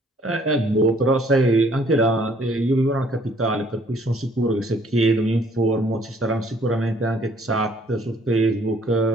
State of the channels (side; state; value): both; normal; correlation 0.61